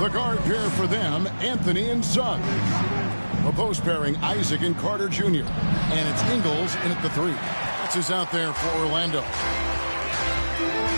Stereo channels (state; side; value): inverted; both; correlation -1.00